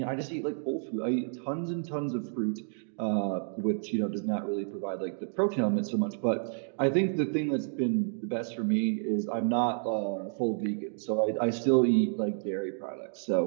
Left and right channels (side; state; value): left; silent; digital silence